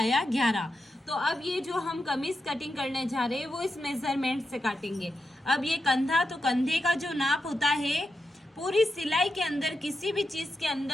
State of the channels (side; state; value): both; normal; correlation 0.88